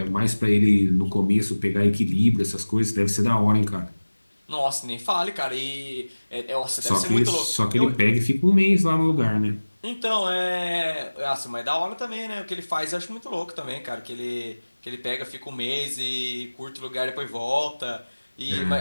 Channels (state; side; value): inverted; both; correlation -1.00